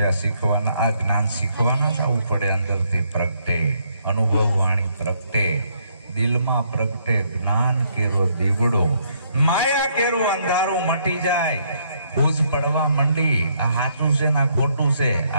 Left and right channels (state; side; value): inverted; both; correlation -0.71